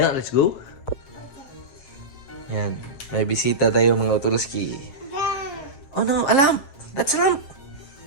Let's go. Yan. May bisita tayo mga Otolski. Oh no, a lamp. That's a lamp.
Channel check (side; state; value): right; late; 7.4 ms